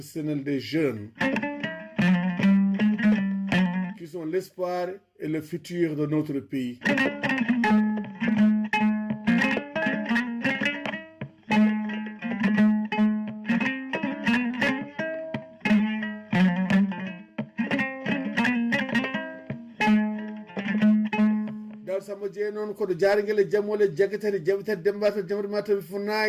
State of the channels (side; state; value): both; identical; correlation 1.00